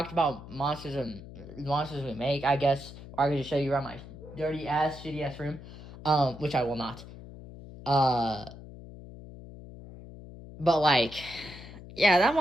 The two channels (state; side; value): noise; left; hum, 15 dB below the sound